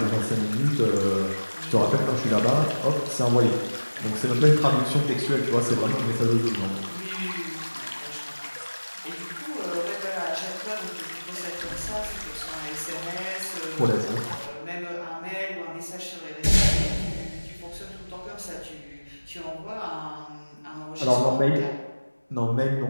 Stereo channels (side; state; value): both; inverted; correlation -1.00